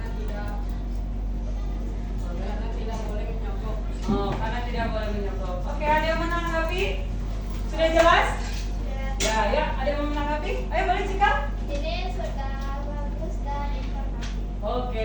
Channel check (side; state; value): both; identical; correlation 1.00